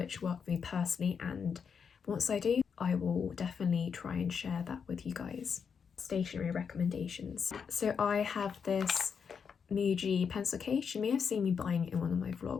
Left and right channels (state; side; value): quieter; right; 6.5 dB